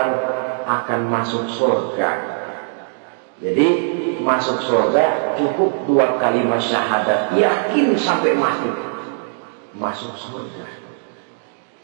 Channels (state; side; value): silent; left; digital silence